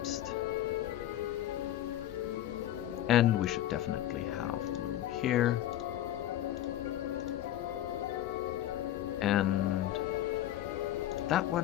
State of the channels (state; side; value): quieter; right; 13.0 dB